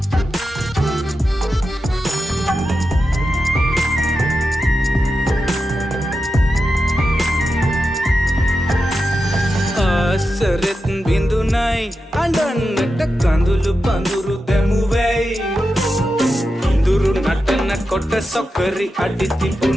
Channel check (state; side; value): normal; both; correlation 0.90